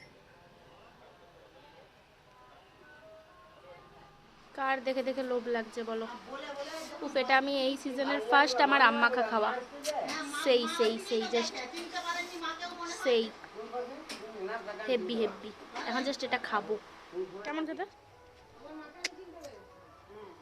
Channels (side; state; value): both; identical; correlation 1.00